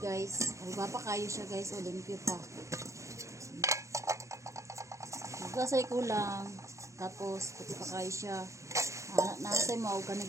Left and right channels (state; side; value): late; left; 0.15 ms